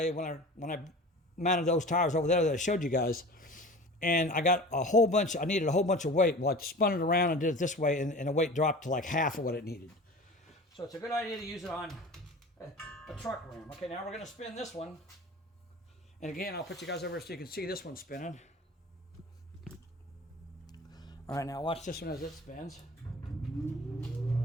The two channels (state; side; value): normal; both; correlation 0.38